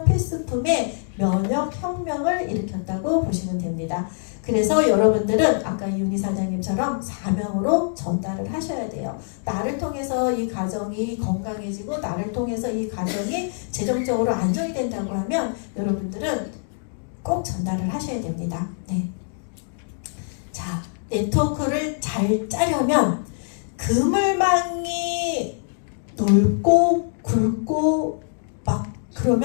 필수품의 면역 혁명을 일으켰다고 보시면 됩니다. 그래서 여러분들은 아까 이윤희 사장님처럼 사명으로 전달을 하셔야 돼요. 나를 통해서 이 가정이 건강해지고 나를 통해서 이 가정이 재정적으로 안정이 된다고 하면 여러분들은 꼭 전달을 하셔야 됩니다. 네. 자, 네트워크를 잘 짜려면 그물망이 넓고 굵고 막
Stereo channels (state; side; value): silent; right; digital silence